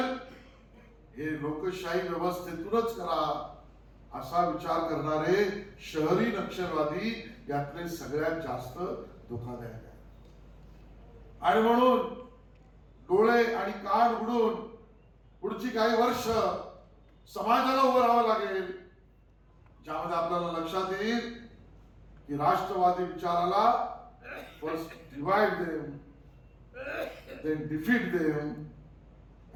हे लोकशाही व्यवस्थेतूनच करा, असा विचार करणारे शहरी नक्षलवादी यातले सगळ्यात जास्त धोकादायक आहे. आणि म्हणून डोळे आणि कान उघडून पुढची काही वर्ष समाजाला उभं राहावं लागेल, ज्यामध्ये आपल्याला लक्षात येईल की राष्ट्रवादी विचाराला first divide them, then defeat them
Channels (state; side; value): identical; both; correlation 1.00